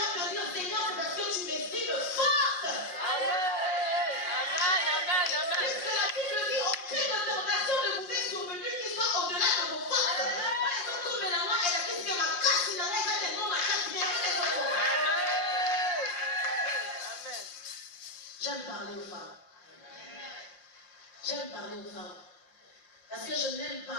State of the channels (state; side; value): late; right; 5.6 ms